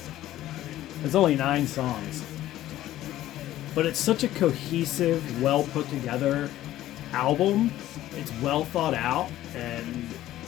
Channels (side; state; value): right; quieter; 14.1 dB